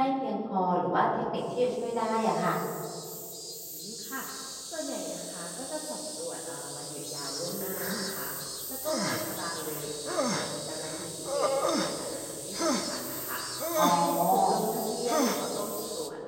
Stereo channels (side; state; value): both; identical; correlation 1.00